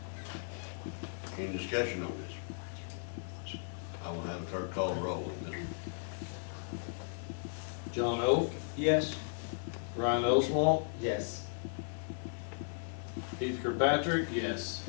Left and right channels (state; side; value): silent; right; digital silence